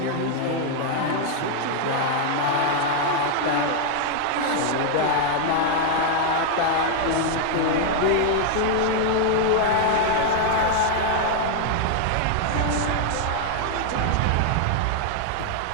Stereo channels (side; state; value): both; different; correlation 0.00